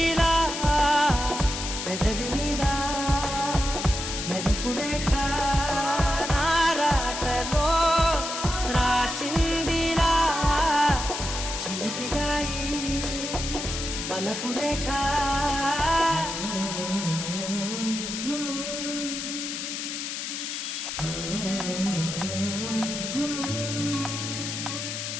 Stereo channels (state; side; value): noise; left; hiss, 5 dB below the sound